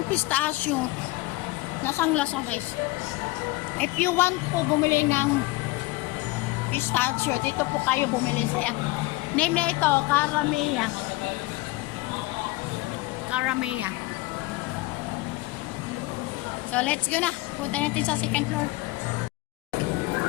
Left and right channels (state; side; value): quieter; right; 20.6 dB